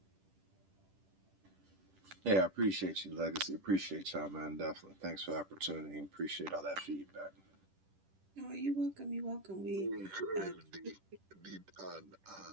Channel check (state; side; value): late; left; 10 ms